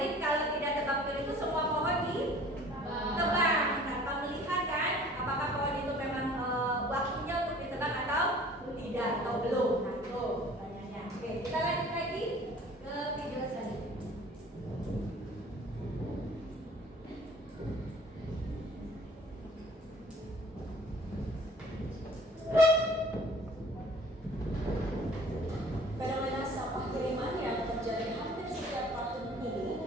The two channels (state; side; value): normal; both; correlation 0.50